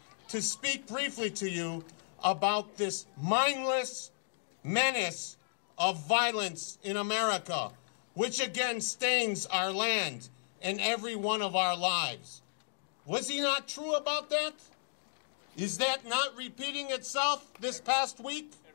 to speak briefly to you about this mindless menace of violence in America, which again stains our land and every one of our lives. Was he not true about that? Is that not repeating itself this past week?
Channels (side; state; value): right; silent; digital silence